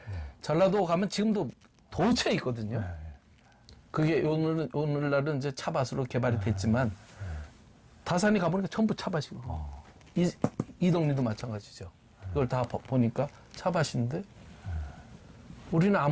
전라도 가면 지금도 도처에 있거든요. 그게 오늘날은 이제 차밭으로 개발이 됐지만 다산이 가보니까 전부 차밭이고 이동리도 마찬가지죠. 이걸 다 보니까 차밭인데 우리는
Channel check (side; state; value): both; identical; correlation 1.00